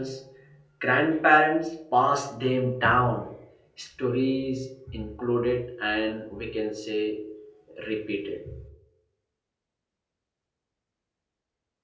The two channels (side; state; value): both; identical; correlation 1.00